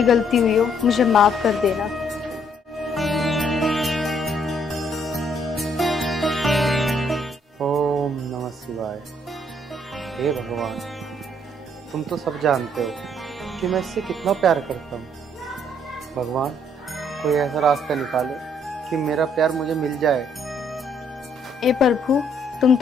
गलती हुई हो मुझे माफ कर देना। भगवान, तुम तो सब जानते हो कि मैं इससे कितना प्यार करता हूँ। भगवान, कोई ऐसा रास्ता निकालो कि मेरा प्यार मुझे मिल जाए। ए प्रभु, तुम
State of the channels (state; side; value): normal; both; correlation 0.67